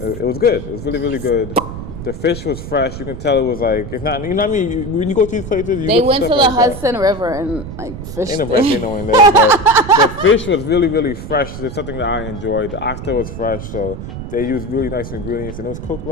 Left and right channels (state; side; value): noise; right; rumble, 9 dB below the sound